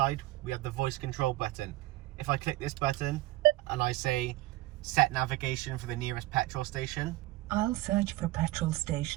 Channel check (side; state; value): left; quieter; 18.4 dB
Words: we have the voice control button. If I click this button and I say set navigation for the nearest petrol station, I'll search for petrol